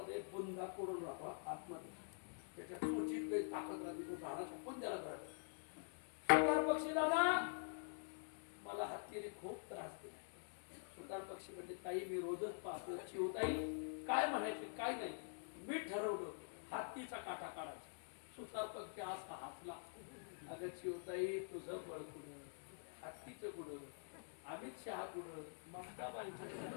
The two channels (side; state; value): right; silent; digital silence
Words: बुंदा कोडून राहतो आतमध्ये. त्याच्या चोचीत लई ताकद राहते. तो झाडाच्या बुंद्याला धरतो. सुतार पक्षीला ना, मला हत्तीने खूप त्रास दिला. सुतार पक्षी म्हणजे, ताई मी रोजच पाहतो. चिवताई काय म्हणायचं? काय नाही, मी ठरवलं हत्तीचा काटा काढायचा. सुतार पक्षी असा हसला. अगं चिवताई, तुझं बळ कुठं, हत्तीचं कुठं, अमित शहा कुठं, ममताबाई